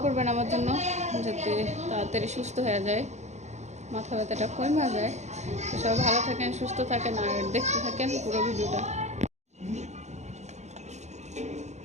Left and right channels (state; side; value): late; left; 0.33 ms